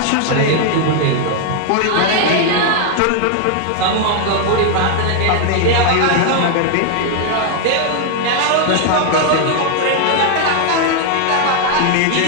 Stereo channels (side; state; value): both; different; correlation 0.00